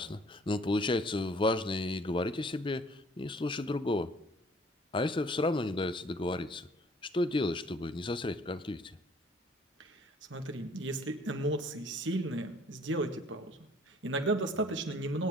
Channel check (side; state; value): both; normal; correlation 0.57